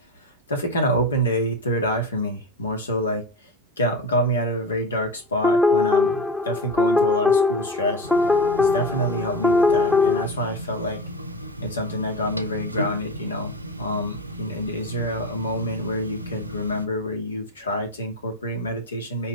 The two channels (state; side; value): normal; both; correlation 0.23